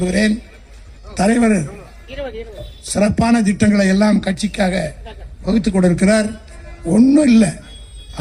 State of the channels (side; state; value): both; identical; correlation 1.00